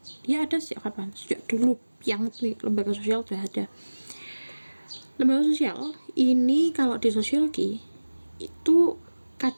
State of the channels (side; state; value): both; inverted; correlation -1.00